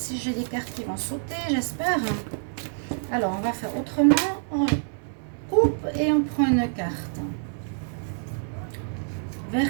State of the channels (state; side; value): silent; left; 60 dB below the other